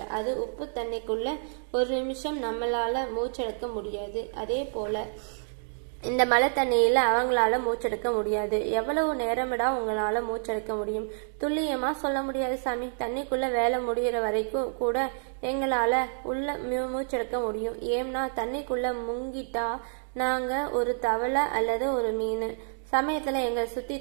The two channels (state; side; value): silent; left; digital silence